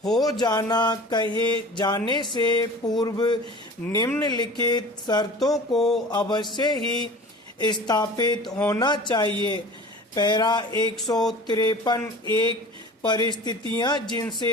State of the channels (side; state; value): both; normal; correlation 0.40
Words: हो जाना कहे जाने से पूर्व निम्नलिखित शर्तों को अवश्य ही स्थापित होना चाहिए। पैरा 153 परिस्थितियां